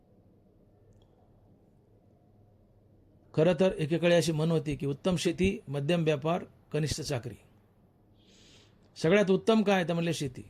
खरं तर एकेकाळी अशी म्हण होती की उत्तम शेती, मध्यम व्यापार, कनिष्ठ चाकरी. सगळ्यात उत्तम काय तर म्हणले शेती,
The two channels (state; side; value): identical; both; correlation 1.00